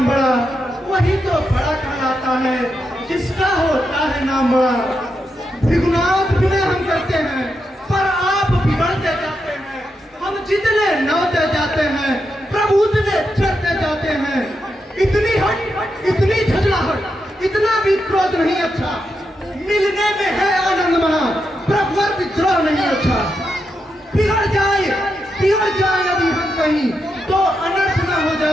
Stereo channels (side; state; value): both; normal; correlation 0.84